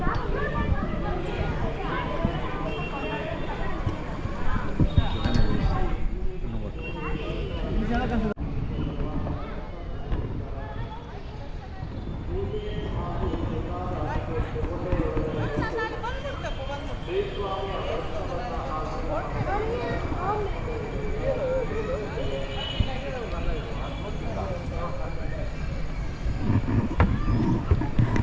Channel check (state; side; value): identical; both; correlation 1.00